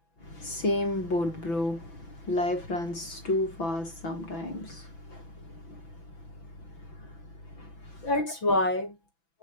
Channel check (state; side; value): late; right; 6.0 ms